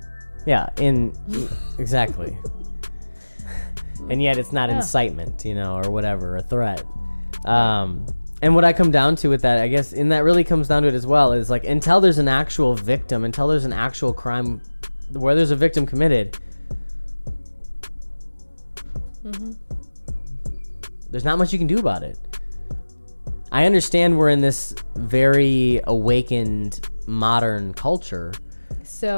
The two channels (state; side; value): inverted; both; correlation -1.00